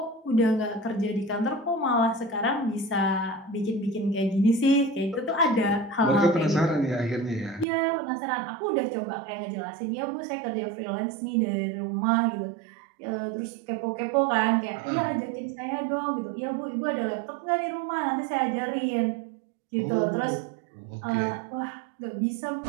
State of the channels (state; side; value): drops out; left; at 7.7 s